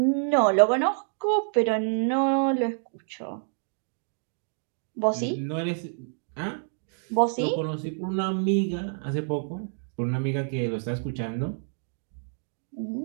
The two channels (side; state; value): left; silent; digital silence